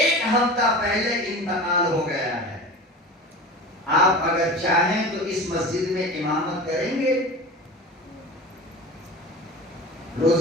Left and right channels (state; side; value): normal; both; correlation 0.33